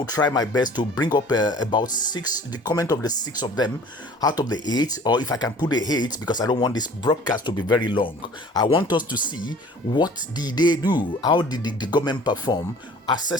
try my best to bring up about 6, the comment of the 6 of them out of the 8, or if I can put the 8, because I don't want this broadcast to be very long. I want us to see what did they do, how did the government perform,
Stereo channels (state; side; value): normal; both; correlation 0.48